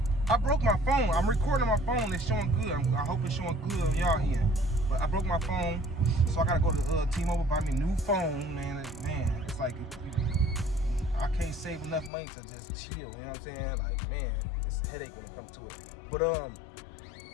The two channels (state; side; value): drops out; right; at 12.1 s